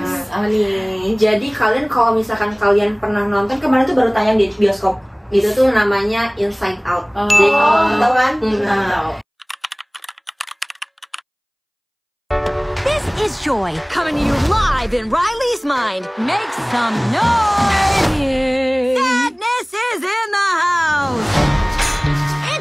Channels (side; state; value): both; identical; correlation 1.00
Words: Apa nih? Jadi kalian kalau misalkan kalian pernah nonton, kemarin tuh baru tayang di bioskop. Itu tuh namanya Inside Out. Jadi kalau tahu kan? This is Joy, coming to you live in Riley's mind. Make some noise! Sadness is in the house!